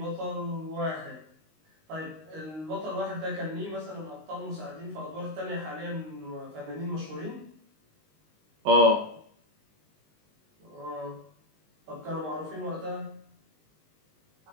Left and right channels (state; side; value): late; left; 19 ms